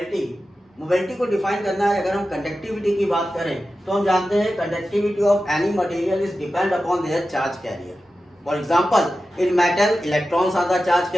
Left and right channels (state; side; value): normal; both; correlation 0.93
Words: Mobility को define करना है. अगर हम conductivity की बात करें तो हम जानते हैं conductivity of any material is depend upon their charge carrier. For example, in metal electrons are the charge